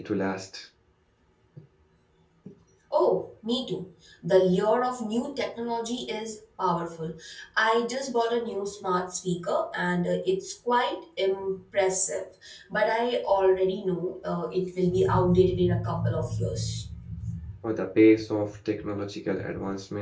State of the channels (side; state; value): both; identical; correlation 1.00